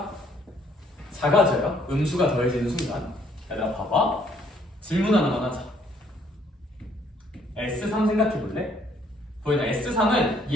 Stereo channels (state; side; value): normal; both; correlation 0.65